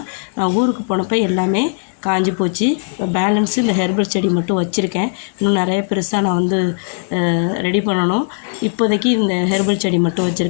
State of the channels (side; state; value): right; silent; 58 dB below the other